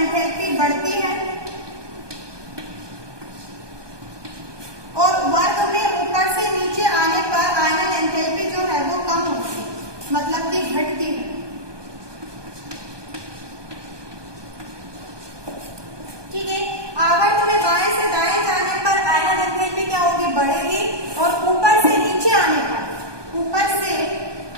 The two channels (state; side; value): late; left; 1.2 ms